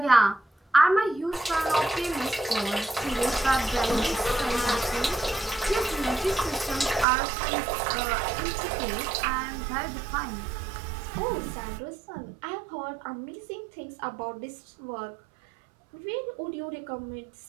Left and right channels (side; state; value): left; drops out; at 7.1 s